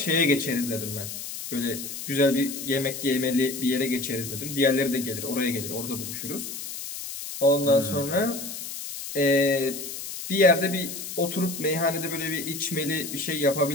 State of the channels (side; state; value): left; noise; hiss, 8 dB below the sound